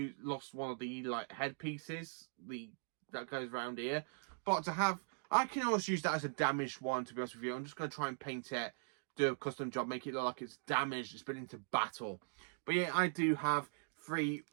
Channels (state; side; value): silent; left; digital silence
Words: lost one of the like headpieces that goes around here. But to have, I can always use that as a damaged one, to be honest with you. I'm just going to try and paint it, do a custom job, make it look like it's damaged, it's been into battle. But yeah, I do have 3,